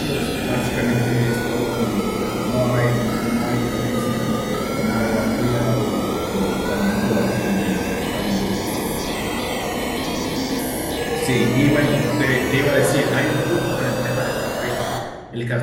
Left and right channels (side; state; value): both; identical; correlation 1.00